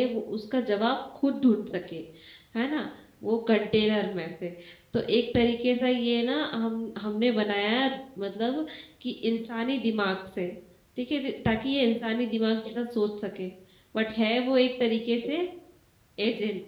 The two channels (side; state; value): both; identical; correlation 1.00